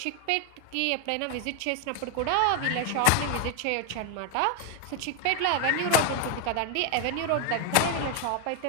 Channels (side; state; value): both; different; correlation 0.01